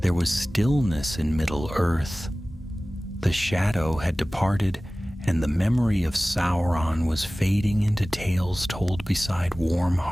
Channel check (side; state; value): both; normal; correlation 0.98